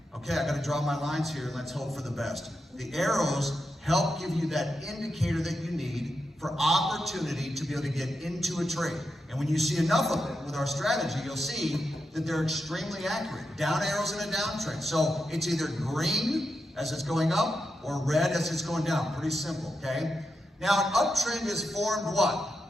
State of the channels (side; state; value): both; normal; correlation 0.87